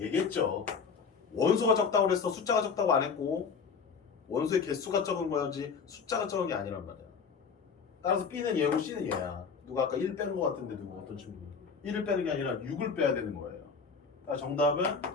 원소가 적다고 그랬어. 숫자가 적다고 안 했고 원소의 개수가 적은 거지 숫자가 적은 게 아니란 말이야. 따라서 B는 얘고 C는 얘야. 누가 아까 1 빼는 거 같은데 누구 어떤 친구 1을 빼는 게 아니라 6을 빼야 되는 거예요. 정답은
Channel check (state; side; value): quieter; right; 5.6 dB